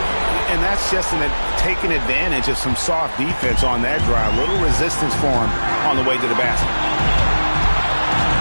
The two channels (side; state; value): both; inverted; correlation -1.00